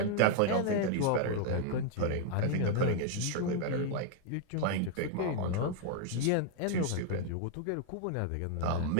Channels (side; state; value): both; different; correlation 0.00